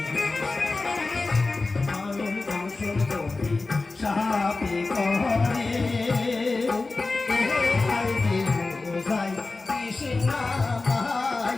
মানুষ ধ্বংস যদি সাপে কহে আইরে মুসাই কৃষ্ণা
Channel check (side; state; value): right; quieter; 3.6 dB